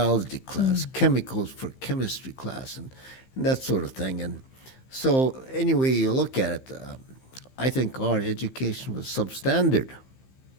class, chemicals for chemistry class, and that sort of thing. And so, anyway you look at it, I think our education was substandard.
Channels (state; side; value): late; right; 15 ms